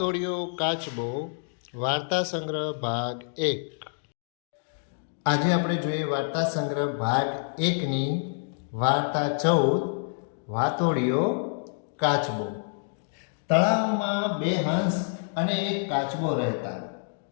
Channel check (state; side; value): silent; right; digital silence